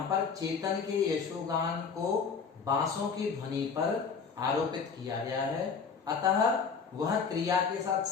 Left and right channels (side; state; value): right; quieter; 5.7 dB